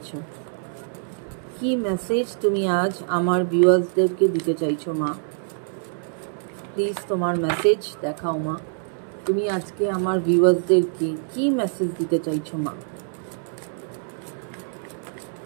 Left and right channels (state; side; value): silent; left; digital silence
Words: কি মেসেজ তুমি আজ আমার ভিউয়ার্সদেরকে দিতে চাইছো মা? প্লিজ তোমার মেসেজ দেখাও মা। তুমি আজকে আমার ভিউয়ার্সদেরকে কি মেসেজ দিতে চাইছো মা?